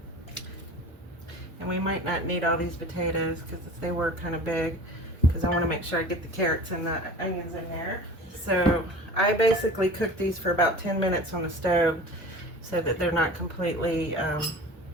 And we might not need all these potatoes because they were kind of big, because I want to make sure I get the carrots and the onions in there. So I basically cook these for about 10 minutes on the stove so that they're not completely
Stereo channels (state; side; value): normal; both; correlation 0.39